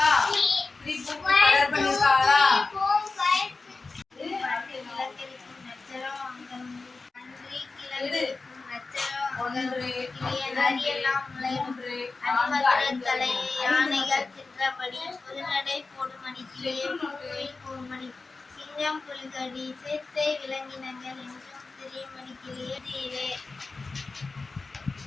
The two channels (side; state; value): right; quieter; 3.9 dB